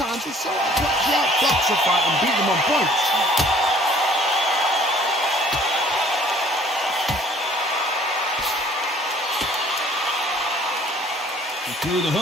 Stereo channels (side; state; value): both; normal; correlation 0.56